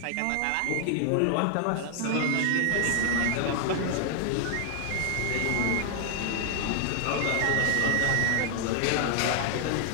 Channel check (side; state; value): both; different; correlation 0.00